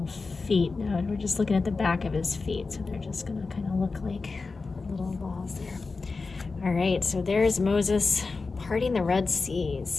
feet. Now we're just looking at the back of his feet, so they're just going to kind of look like little balls there. All right, so there's Moses parting the Red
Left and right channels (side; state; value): right; quieter; 4.1 dB